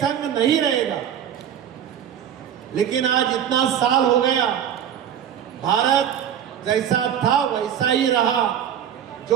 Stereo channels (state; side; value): quieter; left; 9.5 dB